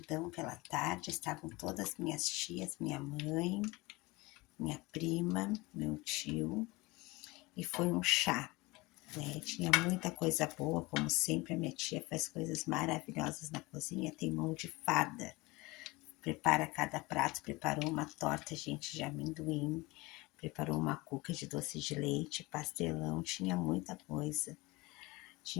pela tarde. Estavam todas minhas tias, minha mãe, minha prima, meu tio. E foi um chá, né? Tinha muita coisa boa, como sempre a minha tia faz coisas maravilhosas na cozinha, tem mão de fada. Prepara cada prato, preparou uma torta, gente, de amendoim, preparou uma cuca de doce de leite, pastelão, tinha muita coisa.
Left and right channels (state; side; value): quieter; right; 22.9 dB